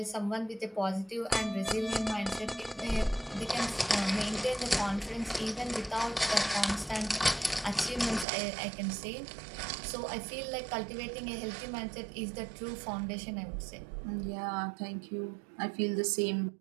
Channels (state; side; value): drops out; left; at 8.2 s